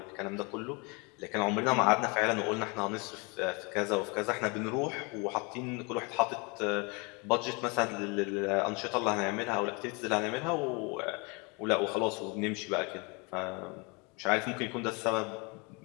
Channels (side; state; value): right; quieter; 30.2 dB